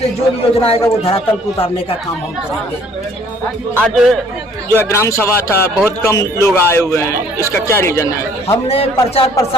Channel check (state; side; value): normal; both; correlation 0.58